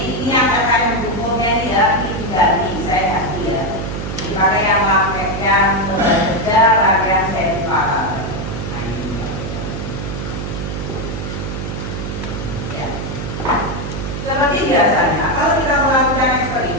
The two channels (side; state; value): right; noise; hum, 6 dB below the sound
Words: ini yang terkait bukunya ini ya, ini diganti, saya ganti ya. Dipakai yang lembar kerja rangkaian